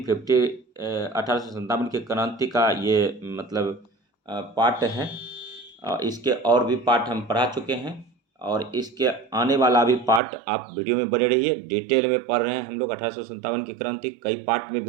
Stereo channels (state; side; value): drops out; left; at 10.2 s